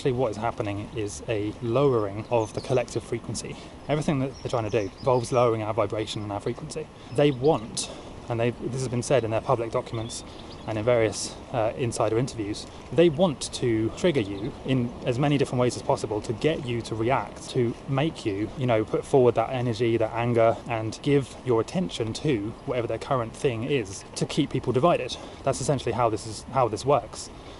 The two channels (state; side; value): identical; both; correlation 1.00